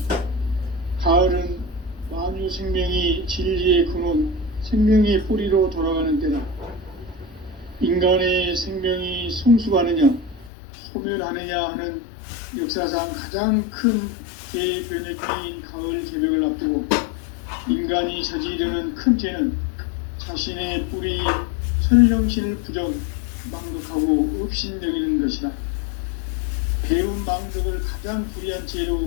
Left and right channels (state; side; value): drops out; right; at 10.5 s